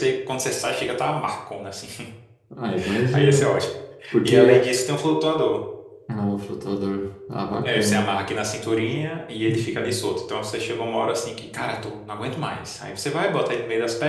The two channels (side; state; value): both; identical; correlation 1.00